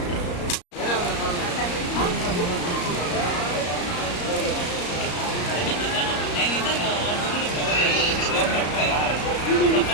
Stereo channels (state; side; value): late; right; 34 ms